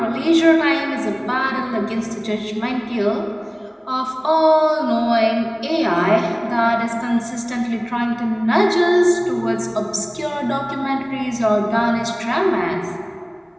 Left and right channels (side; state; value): both; identical; correlation 1.00